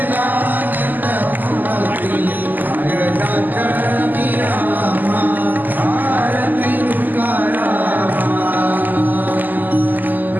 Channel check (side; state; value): left; late; 0.086 ms